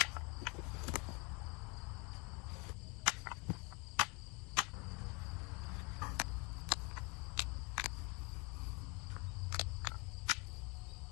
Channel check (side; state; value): right; quieter; 30.3 dB